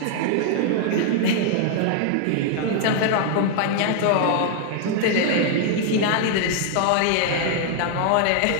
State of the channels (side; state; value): both; different; correlation -0.01